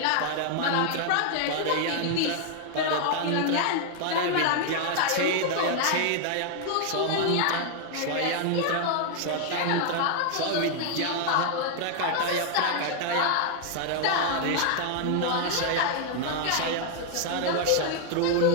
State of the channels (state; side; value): different; both; correlation 0.00